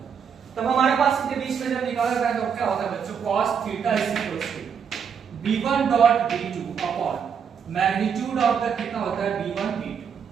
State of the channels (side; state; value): left; quieter; 7.1 dB